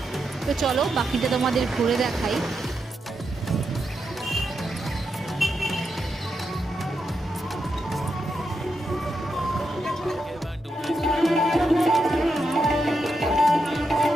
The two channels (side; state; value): both; normal; correlation 0.84